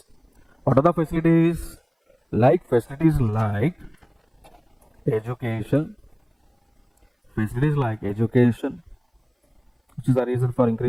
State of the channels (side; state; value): both; identical; correlation 1.00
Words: What are the facilities? Facilities like education, which is the reason for